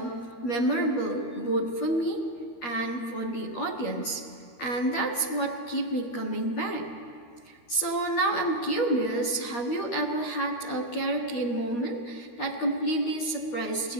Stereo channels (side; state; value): right; late; 13 ms